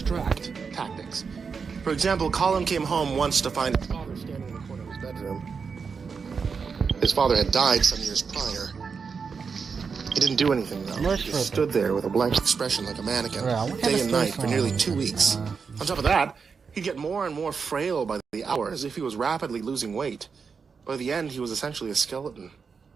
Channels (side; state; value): left; quieter; 5.6 dB